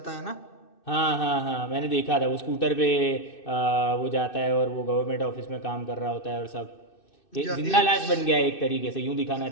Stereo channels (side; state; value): right; late; 2.6 ms